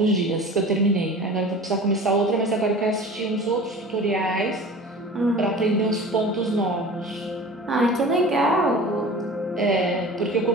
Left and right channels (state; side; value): normal; both; correlation 0.39